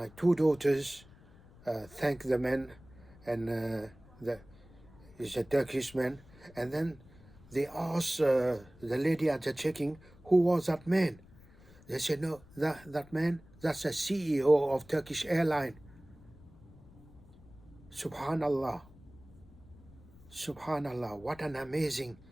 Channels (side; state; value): left; noise; rumble, 23 dB below the sound